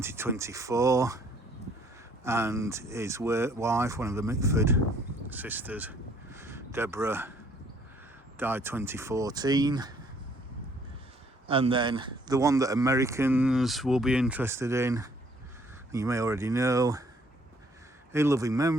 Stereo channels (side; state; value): both; normal; correlation 0.62